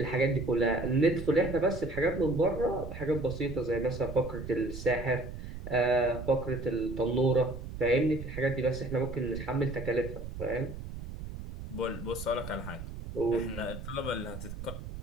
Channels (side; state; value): right; noise; rumble, 9 dB below the sound